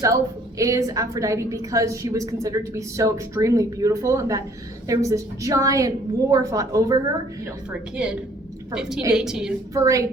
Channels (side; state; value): both; normal; correlation 0.59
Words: is Aphrodite because she was considered to be so extremely beautiful and that there was this giant war fought over her. You know, for a kid, For 15, a- 18. For